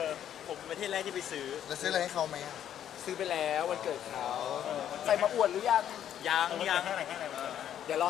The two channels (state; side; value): quieter; right; 10.3 dB